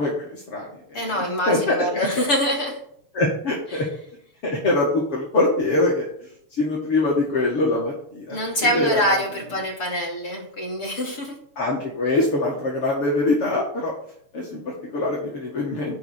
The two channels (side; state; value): right; late; 6.9 ms